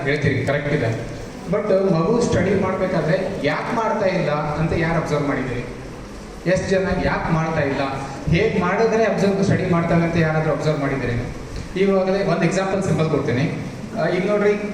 ಹೇಳ್ತೀರಿ, ಕರೆಕ್ಟ್ ಇದೆ. ಬಟ್ ಮಗು ಸ್ಟಡಿ ಮಾಡಬೇಕಾದ್ರೆ ಯಾಕೆ ಮಾಡ್ತಾ ಇಲ್ಲ ಅಂತ ಯಾರು ಅಬ್ಸರ್ವ್ ಮಾಡಿದ್ದೀರಿ? ಎಷ್ಟು ಜನ ಯಾಕೆ ಮಾಡ್ತಾ ಇಲ್ಲ, ಹೇಗೆ ಮಾಡಿದ್ರೆ ಸ್ಟಡಿ ಮಾಡ್ತಾರೆ ಅಂತ ಯಾರಾದರೂ ಅಬ್ಸರ್ವ್ ಮಾಡಿದ್ದೀರಿ? ಇವಾಗಲೇ ಒಂದು ಎಕ್ಸಾಂಪಲ್ ಸಿಂಪಲ್ ಕೊಡ್ತೀನಿ. ಈಗ ನೋಡ್ರಿ,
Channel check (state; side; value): identical; both; correlation 1.00